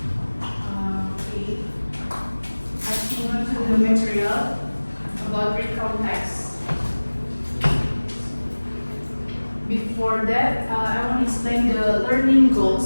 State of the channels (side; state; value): both; inverted; correlation -1.00